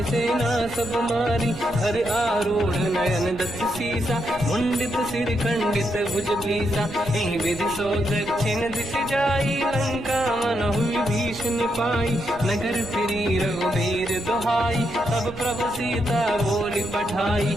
सेना सब मारी, हर आरूढ़ नयन दस सीसा, मुंडित सिर खंडित भुज भीसा, एहि विधि सो दक्षिण दिश जाई, लंका मन हुई भीषण पाई, नगर फिरी रघुबीर दुहाई, तब प्रभु सीता बोली पठाई,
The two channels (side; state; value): right; noise; rumble, 17 dB below the sound